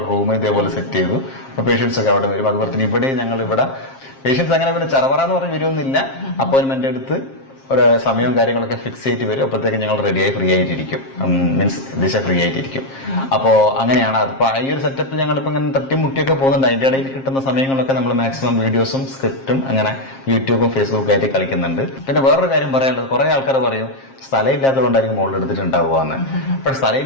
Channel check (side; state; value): right; late; 7.5 ms